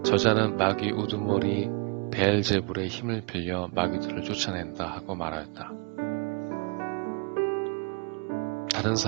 저자는 마귀 우두머리 베엘제불의 힘을 빌려 마귀들을 쫓아낸다 하고 말하였다. 다른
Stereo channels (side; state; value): left; quieter; 33.9 dB